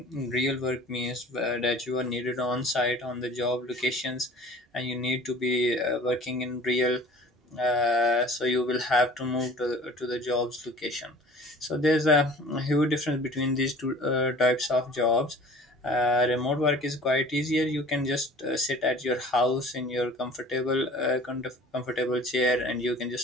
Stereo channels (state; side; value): normal; both; correlation 0.46